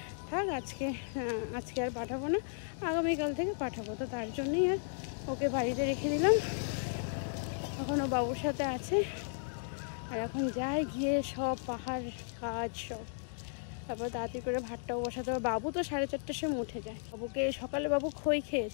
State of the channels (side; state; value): right; silent; digital silence